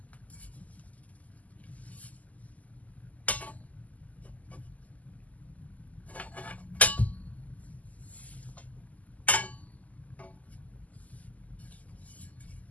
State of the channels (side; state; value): right; late; 0.075 ms